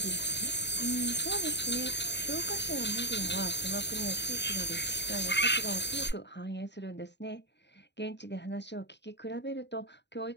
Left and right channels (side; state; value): right; late; 0.51 ms